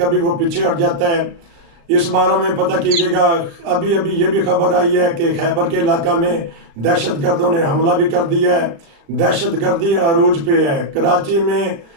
वो पीछे हट जाता है। इस बारे में पता कीजिएगा। अभी अभी ये भी खबर आई है कि खैबर के इलाका में दहशत गर्दों ने हमला भी कर दिया है। दहशत गर्दी अरूज पे है। कराची में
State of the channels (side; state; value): left; late; 35 ms